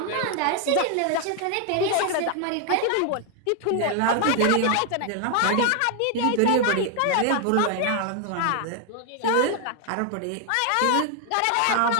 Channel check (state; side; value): different; both; correlation 0.00